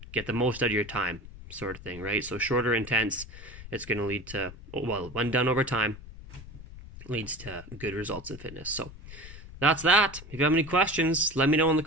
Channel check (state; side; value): noise; left; rumble, 15 dB below the sound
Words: get the most out of your time sort of thing, right? So shorter intense, it's going to lead to, well, when done over time, leads to good results in fitness. So that's that. If you have any questions, let me know in the